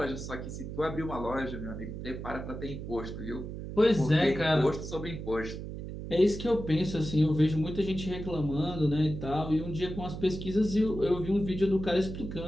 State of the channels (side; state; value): right; noise; hum, 8 dB below the sound